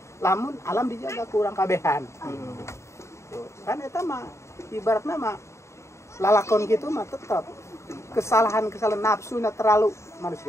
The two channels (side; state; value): right; late; 0.14 ms